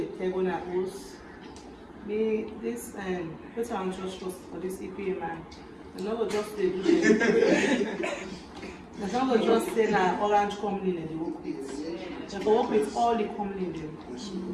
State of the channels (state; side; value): identical; both; correlation 1.00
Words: table and host. Me this what I'm just for this EPA man. I'm not just say I'm not just say that orange company in the work with. I work with all the company there.